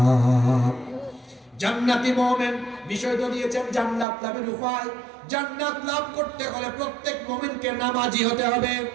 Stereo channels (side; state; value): left; drops out; at 4.0 s